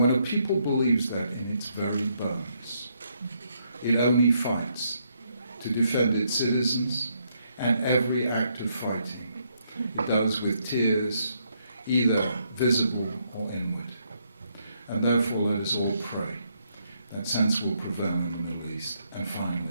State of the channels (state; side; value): inverted; both; correlation -0.75